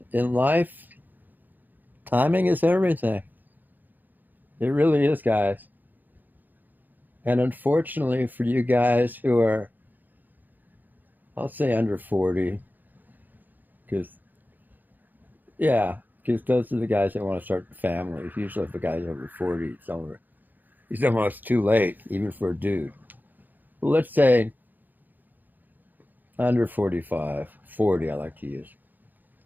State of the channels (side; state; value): left; late; 0.086 ms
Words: in life, timing is everything. It really is, guys. And unfortunately for you guys who are, I'll say under 40, because, yeah, because those are the guys that want to start families. Usually if a guy's over 40, he's almost too late, even for a dude. Well, let's say under 45, 40, I like to use.